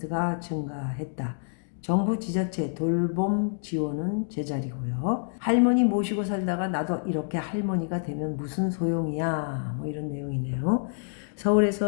증가했다. 정부 지자체 돌봄 지원은 제자리고요. 할머니 모시고 살다가 나도 이렇게 할머니가 되면 무슨 소용이야, 이런 내용이네요.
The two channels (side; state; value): right; silent; digital silence